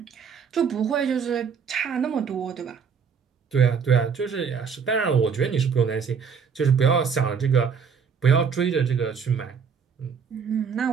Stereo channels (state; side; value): quieter; left; 6.3 dB